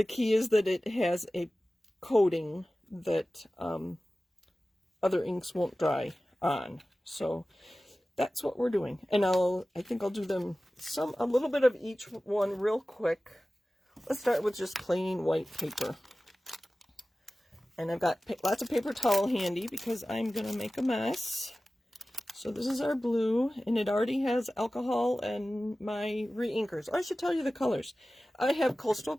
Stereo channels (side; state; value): both; normal; correlation 0.96